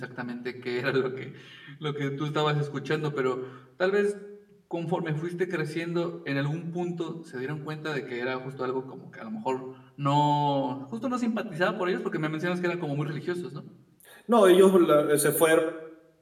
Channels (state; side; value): identical; both; correlation 1.00